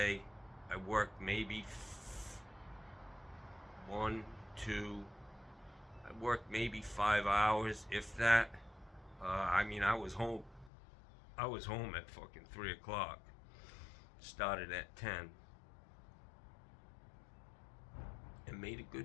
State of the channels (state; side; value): drops out; right; at 10.7 s